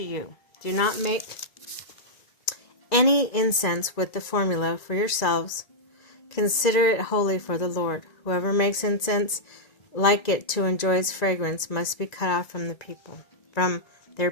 you. Do not make any incense with the formula for yourselves. Consider it holy for the Lord. Whoever makes incense like it to enjoy its fragrance must be cut off from their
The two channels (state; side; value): late; right; 1.9 ms